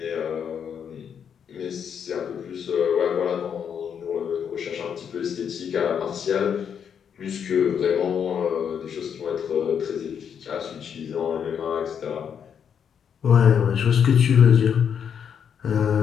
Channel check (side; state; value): right; quieter; 7.8 dB